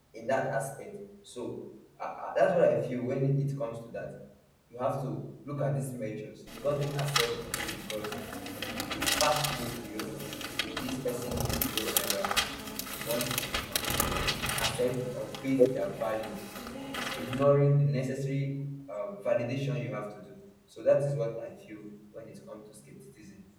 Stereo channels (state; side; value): identical; both; correlation 1.00